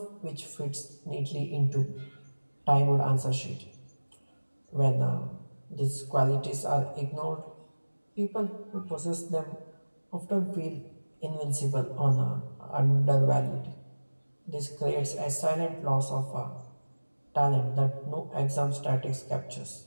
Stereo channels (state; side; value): inverted; both; correlation -1.00